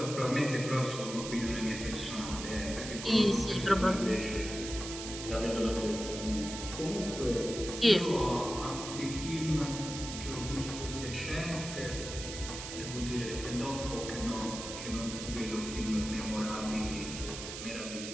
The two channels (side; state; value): right; noise; hiss, 8 dB below the sound